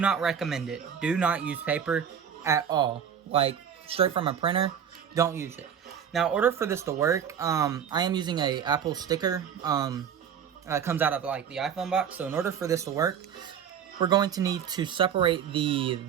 recommend it. Do not use paper at all. Like, straight from a printer, don't use it. Now, in order for this to work, I am using a Apple sticker. It comes out of, like, the iPhone box. So, in order for this to work, we're going to need to separate the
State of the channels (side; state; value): left; quieter; 8.2 dB